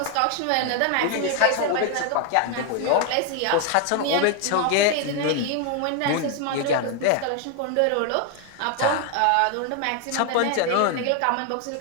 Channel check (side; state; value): both; different; correlation 0.01